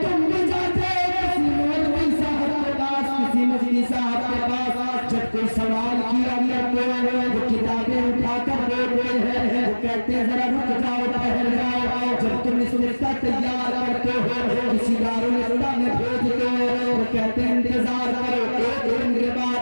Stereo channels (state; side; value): inverted; both; correlation -1.00